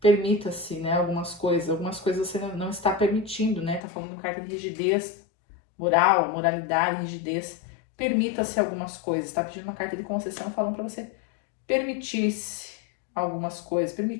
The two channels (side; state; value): right; drops out; at 3.8 s